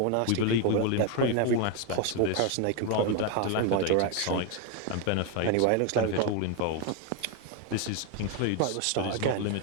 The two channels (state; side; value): different; both; correlation 0.01